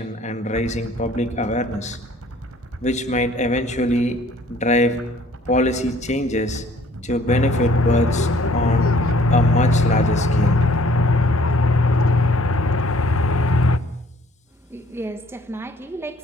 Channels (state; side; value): normal; both; correlation 0.57